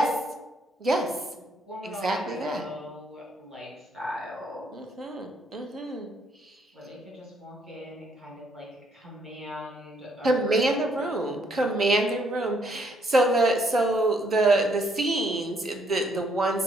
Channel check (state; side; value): normal; both; correlation 0.70